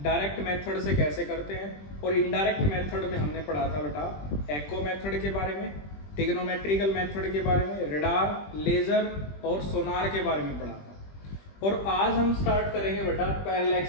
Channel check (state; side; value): late; right; 20 ms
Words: direct method से कैसे करते हैं। और इनडायरेक्ट मेथड में हमने पढ़ा था बेटा एको मेथड के बारे में, टिग्नोमेट्रिकल मेथड के बारे में, रडार, लेजर और सोनार के बारे में पढ़ा था। और आज हम स्टार्ट करेंगे बेटा